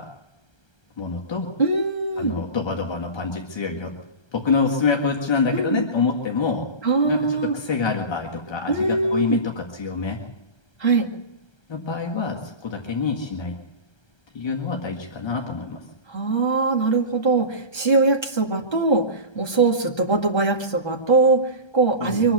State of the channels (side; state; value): right; late; 1.3 ms